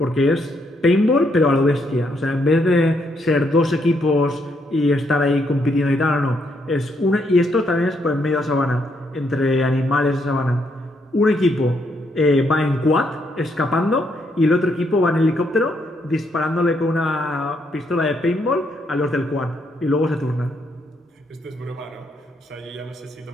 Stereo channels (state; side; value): normal; both; correlation 0.75